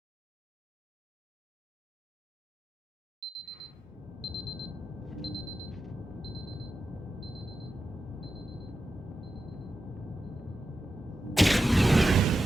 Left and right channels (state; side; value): normal; both; correlation 0.90